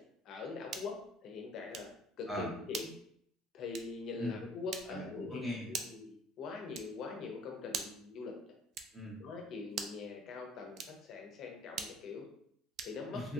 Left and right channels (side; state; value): both; normal; correlation 0.54